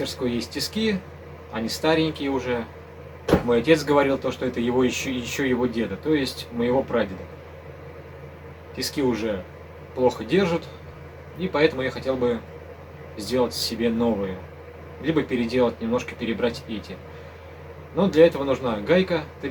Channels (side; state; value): both; identical; correlation 1.00